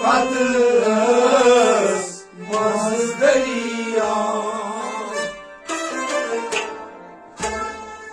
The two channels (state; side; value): identical; both; correlation 1.00